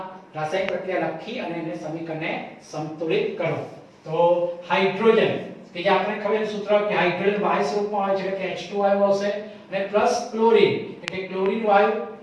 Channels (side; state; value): both; identical; correlation 1.00